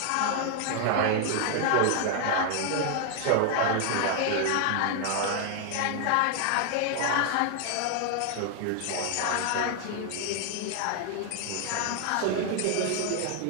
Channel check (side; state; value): both; different; correlation 0.00